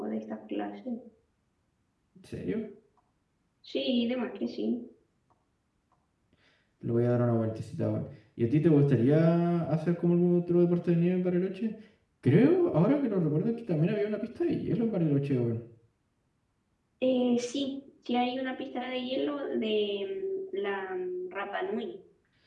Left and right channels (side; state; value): both; identical; correlation 1.00